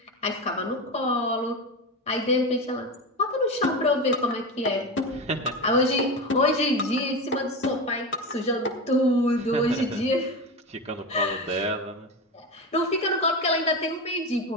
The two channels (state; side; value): normal; both; correlation 0.21